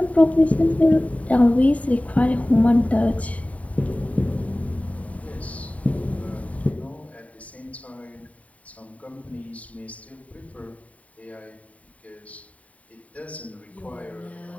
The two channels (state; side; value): late; right; 0.068 ms